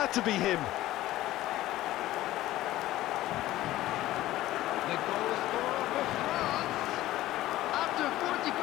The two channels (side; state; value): right; quieter; 15.5 dB